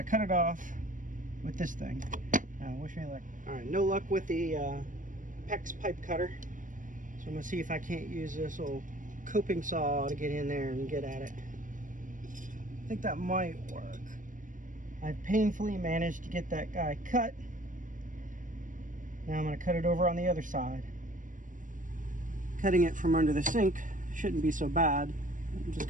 cut it off with this thing. Wish me luck. Alright, no luck with the PEX pipe cutter, so I'm going to see if I can't use this old coping saw to get in there and get at it. I think that might work. I painfully managed to get that guy cut. Now I'm going to cut it over on the other side. Cutting it from under the sink shouldn't be so bad. I'm just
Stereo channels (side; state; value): left; late; 0.38 ms